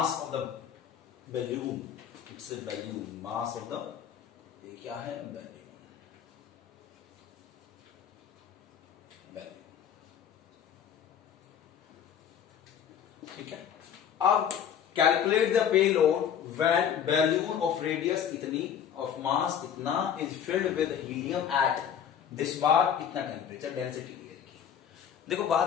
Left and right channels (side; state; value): right; quieter; 8.6 dB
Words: of the balloon. It's a balloon, mass of the, ये क्या है, बैलून। ठीक है, अब calculate the payload when balloon of radius इतनी ऑफ मास इतना is filled with helium at this bar इतना टेम्परेचर डेंसिटी एयर की। देखो